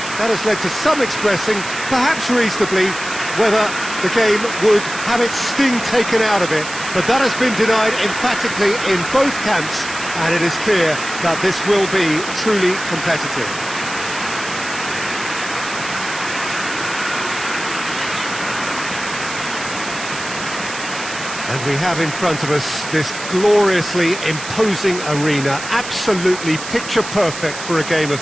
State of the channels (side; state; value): right; noise; hiss, 10 dB below the sound